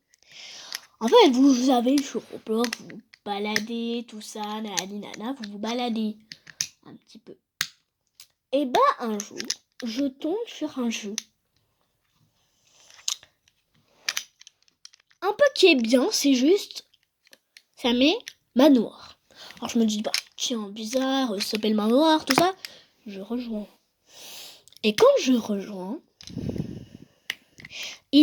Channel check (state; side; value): identical; both; correlation 1.00